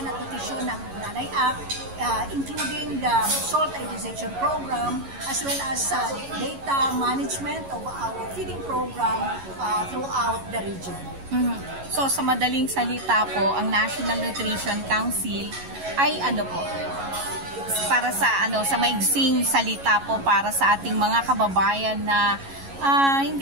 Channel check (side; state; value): left; late; 11 ms